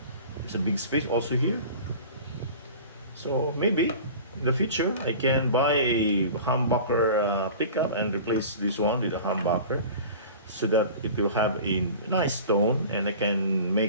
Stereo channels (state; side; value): inverted; both; correlation -0.39